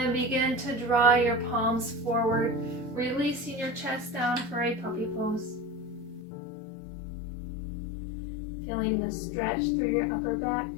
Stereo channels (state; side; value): drops out; right; at 6.2 s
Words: begin to draw your palms forward, releasing your chest down for a puppy pose. Feeling the stretch through your upper back.